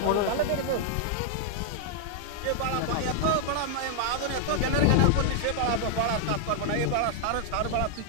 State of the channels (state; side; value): different; both; correlation 0.00